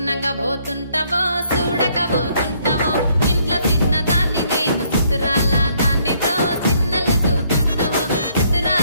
పోతుంటావో చూడక పోతుంటావో ఇంట్లో చిన్నదాన్ని నేను సిద్ధిరాల దాన్నితో చిన్నలు చూపిస్తావో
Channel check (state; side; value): inverted; both; correlation -0.67